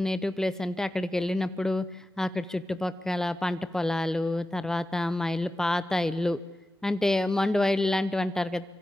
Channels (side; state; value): both; normal; correlation 0.94